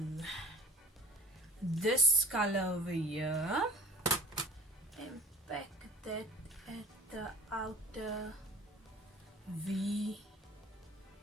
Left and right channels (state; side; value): normal; both; correlation 0.44